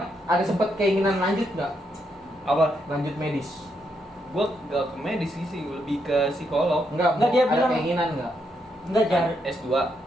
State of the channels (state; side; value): normal; both; correlation 0.78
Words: ada sempet keinginan lanjut nggak? Apa? Lanjut medis? Gua gak ke medis sih, lebih ke psikolog. Enggak, Nggak, dia ada bilang- keinginan nggak? Enggak jar. S2